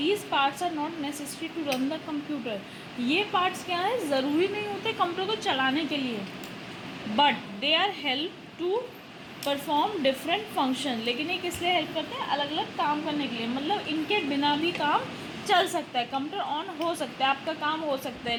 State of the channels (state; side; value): identical; both; correlation 1.00